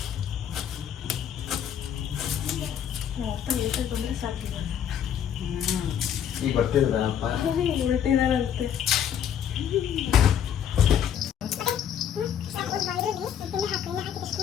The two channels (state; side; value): quieter; right; 9.1 dB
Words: ಬಂದರೆ ಸಾಕಿಲ್ಲ. ಈಗ ಬರ್ತಿದ್ದಾರಪ್ಪ, ಹೊರಟಿದಾರಂತೆ.